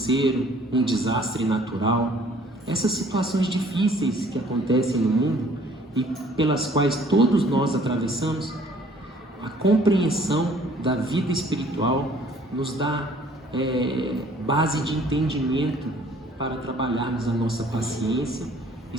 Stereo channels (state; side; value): normal; both; correlation 0.57